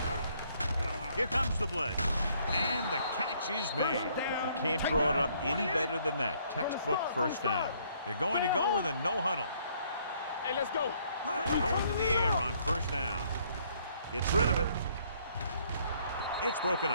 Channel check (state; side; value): inverted; both; correlation -0.65